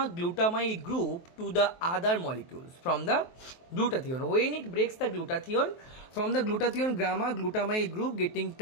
group to the other molecules from the glutathione. When it breaks the glutathione, from the glutathione, gamma-glutamyl group getting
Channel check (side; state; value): right; late; 23 ms